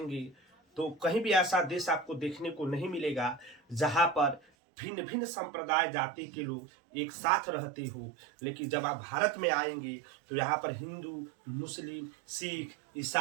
तो कहीं भी ऐसा देश आपको देखने को नहीं मिलेगा जहां पर भिन्न भिन्न संप्रदाय जाति के लोग एक साथ रहते हो। लेकिन जब आप भारत में आएंगे तो यहाँ पर हिंदू, मुस्लिम, सिख,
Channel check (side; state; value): left; drops out; at 4.4 s